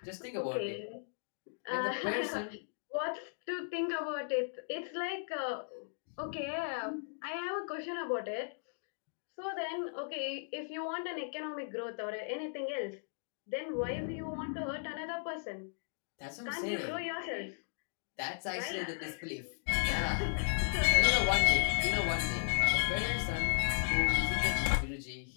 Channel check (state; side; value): silent; right; digital silence